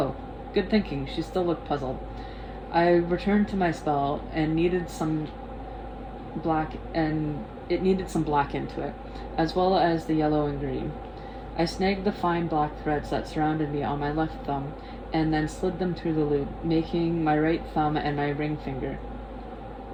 good thinking. She still looked puzzled. I returned to my spell and it needed some black into it, as well as the yellow and green. I snagged the fine black threads that surrounded me on my left thumb, and then slid them through the loop, making my right thumb and my ring finger.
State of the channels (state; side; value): identical; both; correlation 1.00